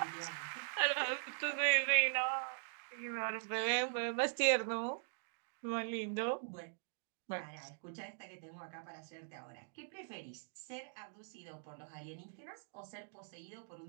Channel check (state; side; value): silent; left; digital silence